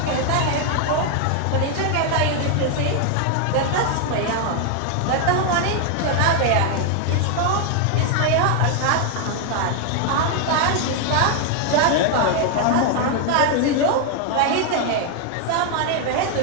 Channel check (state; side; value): different; both; correlation 0.00